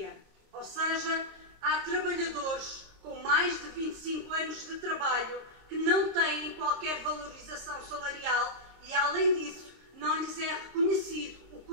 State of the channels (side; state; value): left; late; 26 ms